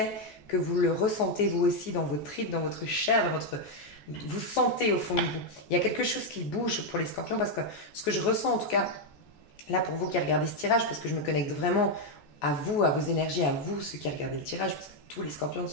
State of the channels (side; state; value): right; late; 14 ms